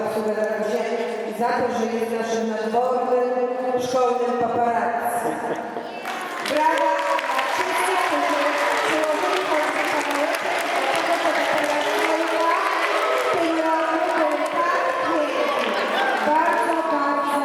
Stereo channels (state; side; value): identical; both; correlation 1.00